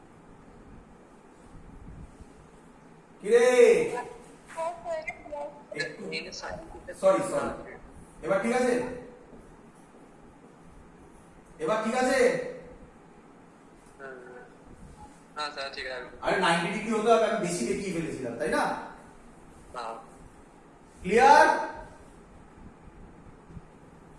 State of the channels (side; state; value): both; identical; correlation 1.00